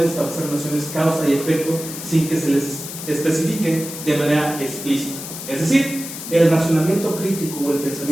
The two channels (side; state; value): left; noise; hiss, 9 dB below the sound